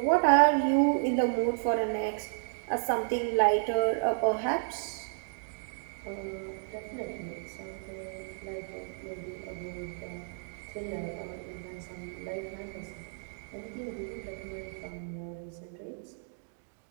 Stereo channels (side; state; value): left; silent; digital silence